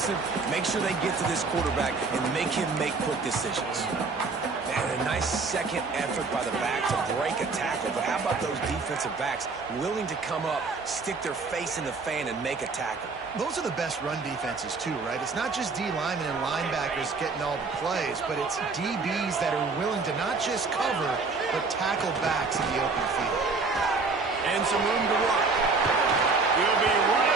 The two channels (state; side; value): quieter; left; 4.2 dB